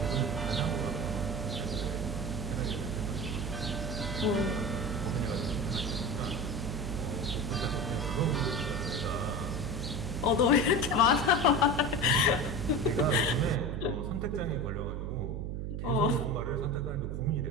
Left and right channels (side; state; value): right; noise; hum, 3 dB below the sound